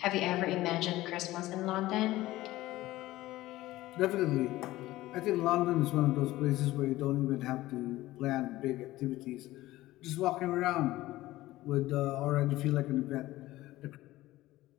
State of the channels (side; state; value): right; quieter; 16.9 dB